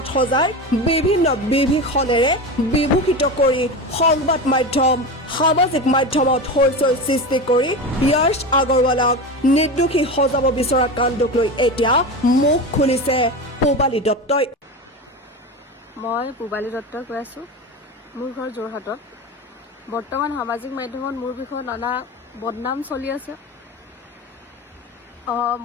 সজাই বিভিন্ন বিভীষণেৰে বিভূষিত কৰি সংবাদ মাধ্যম সামাজিক মাধ্যমত হইচই সৃষ্টি কৰি য়শ আগৰৱালক নিৰ্দোষী সজাব বিচৰা কাণ্ডক লৈ এতিয়া মুখ খুলিছে পূবালী দত্তই। মই পূবালী দত্তই কৈ আছোঁ। মোৰ ঘৰ যোৰহাটত। বৰ্তমান সামাজিক মাধ্যমত মোৰ বিষয়ে নানা বদনাম চলি আছে।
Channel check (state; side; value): normal; both; correlation 0.24